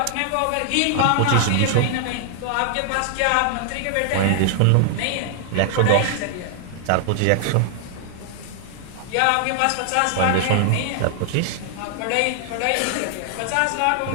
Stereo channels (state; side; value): different; both; correlation 0.00